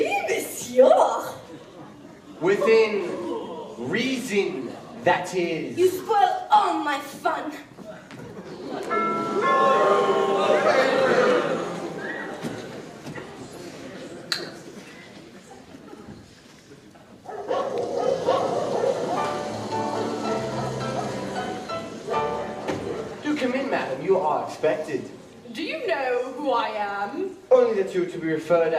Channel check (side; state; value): both; identical; correlation 1.00